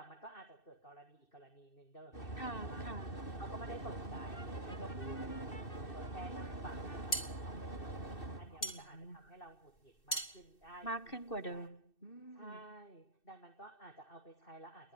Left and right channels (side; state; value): right; late; 2.6 ms